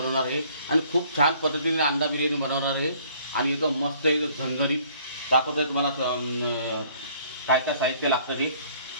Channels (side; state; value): both; inverted; correlation -0.59